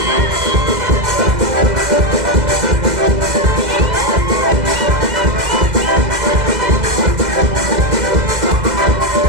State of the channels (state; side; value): late; left; 2.0 ms